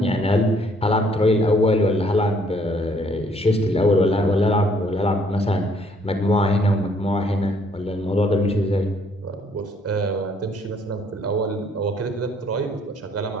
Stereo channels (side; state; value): both; normal; correlation 0.65